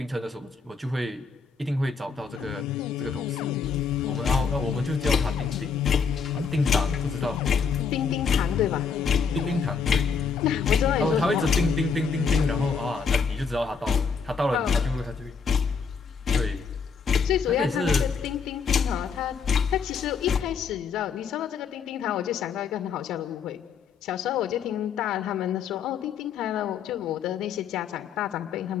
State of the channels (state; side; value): quieter; right; 5.8 dB